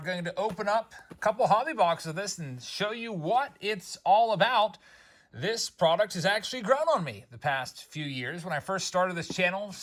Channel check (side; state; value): both; identical; correlation 1.00